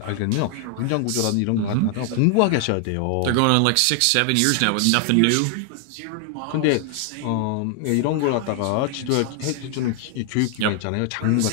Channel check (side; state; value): both; different; correlation 0.00